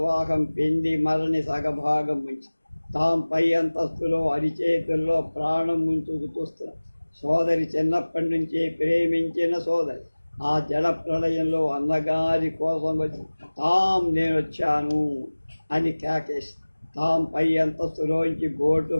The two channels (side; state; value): both; inverted; correlation -1.00